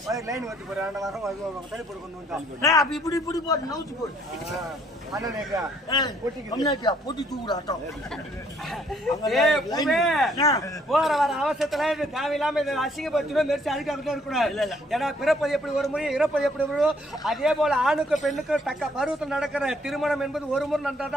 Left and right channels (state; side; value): normal; both; correlation 0.65